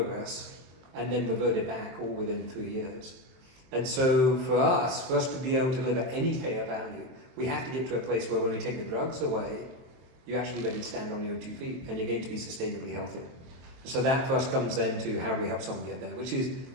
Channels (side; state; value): left; late; 23 ms